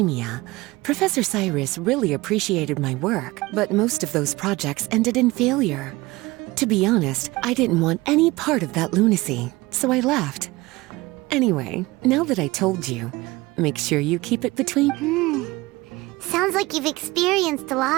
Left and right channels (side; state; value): left; quieter; 20.9 dB